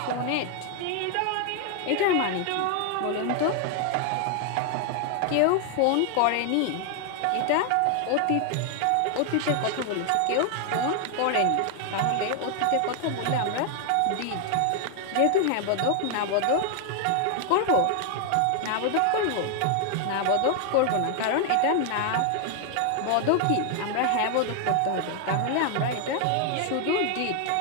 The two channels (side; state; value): both; different; correlation 0.00